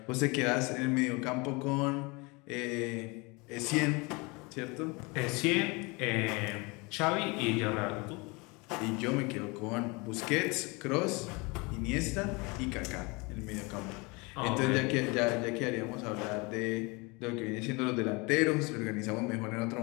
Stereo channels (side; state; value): right; quieter; 27.1 dB